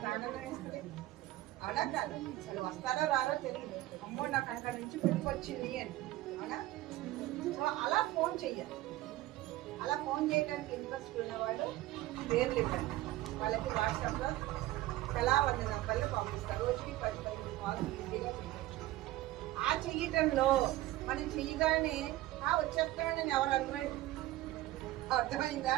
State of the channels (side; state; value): left; quieter; 16.4 dB